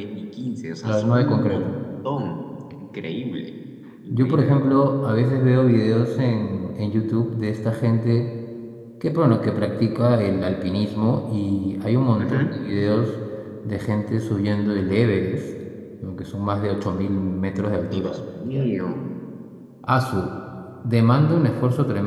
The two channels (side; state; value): both; identical; correlation 1.00